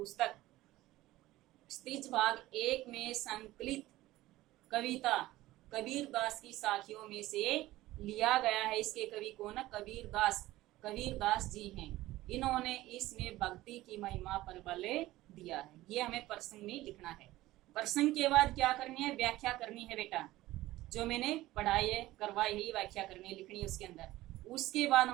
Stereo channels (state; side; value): quieter; left; 16.8 dB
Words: स्त्रीज भाग 1 में संकलित कविता कबीर दास की साखियों में से लिया गया है। इसके कवि कौन है? कबीर दास जी हैं। इन्होंने इसमें भक्ति की महिमा पर बल दिया है। ये हमें प्रसंग में लिखना है। प्रसंग के बाद क्या करनी है? व्याख्या करनी है बेटा। जो मैंने पढ़ाई है, करवाई है, व्याख्या करनी है, लिखनी है उसके अंदर। उसके बाद